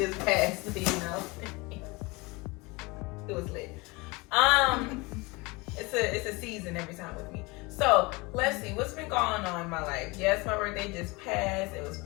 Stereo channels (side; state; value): right; quieter; 25.3 dB